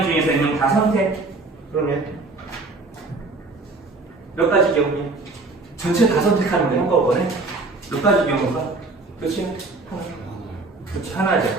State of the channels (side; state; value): left; quieter; 3.5 dB